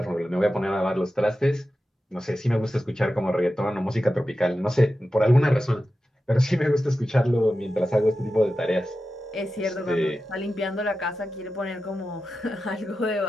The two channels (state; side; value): normal; both; correlation 0.92